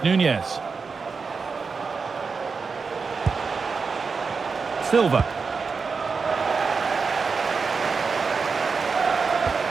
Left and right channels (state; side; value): quieter; left; 5.0 dB